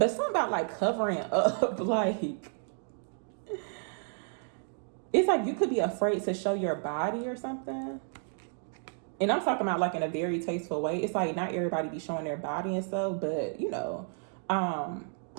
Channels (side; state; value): left; silent; 57 dB below the other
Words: something about like covering up, like it's like you could be afraid to show your body or something. And I'm talking about like in a very tasteful way. It's like not everybody be showing their body and stuff, but you know,